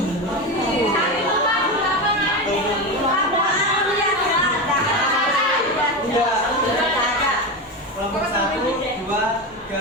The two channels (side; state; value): both; normal; correlation 0.18